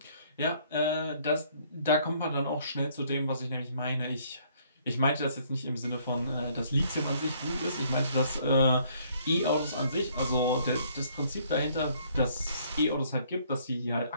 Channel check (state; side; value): inverted; both; correlation -0.63